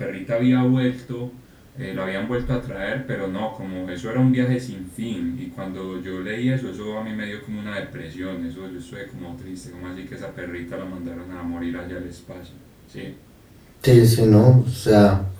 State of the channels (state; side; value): identical; both; correlation 1.00